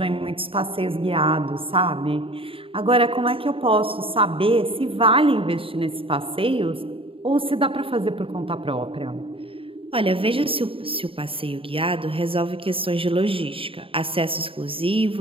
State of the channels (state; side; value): late; left; 0.26 ms